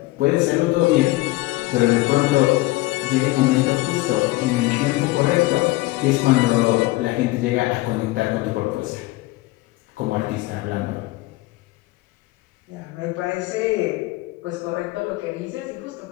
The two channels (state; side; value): quieter; right; 19.8 dB